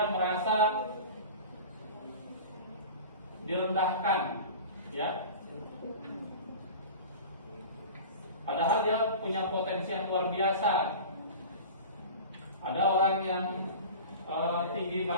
merasa direndahkan, ya. Padahal dia punya potensi yang luar biasa. Ada orang yang tinggi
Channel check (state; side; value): inverted; both; correlation -0.35